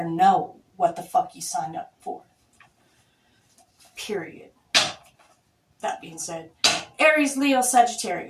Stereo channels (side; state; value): both; identical; correlation 1.00